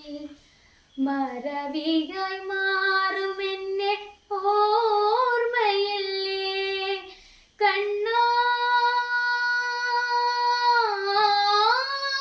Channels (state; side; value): identical; both; correlation 1.00